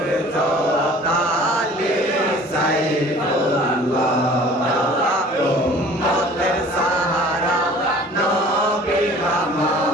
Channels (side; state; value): both; normal; correlation 0.48